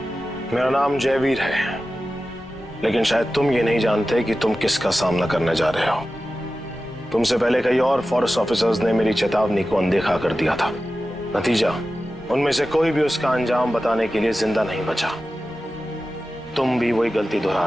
मेरा नाम जयवीर है, लेकिन शायद तुम ये नहीं जानते कि तुम किसका सामना करने जा रहे हो। तुमसे पहले कई और फॉरेस्ट ऑफिसर्स ने मेरी चेतावनी को अनदेखा कर दिया था। नतीजा, उनमें से कोई भी उसका अंजाम बताने के लिए जिंदा नहीं बचा। तुम भी वही गलती दोहरा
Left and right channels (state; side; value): normal; both; correlation 0.94